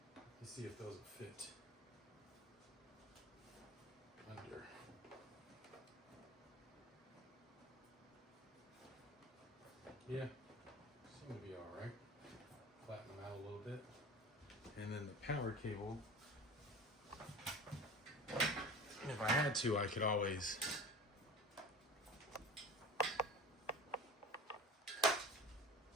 Let's see if those will fit under. Yeah, seem to be all right. Flatten them out a little bit. And then the power cable, if I had to, I could always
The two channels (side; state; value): both; normal; correlation 0.35